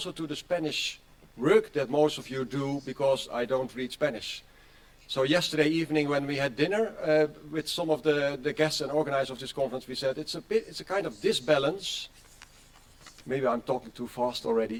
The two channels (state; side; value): identical; both; correlation 1.00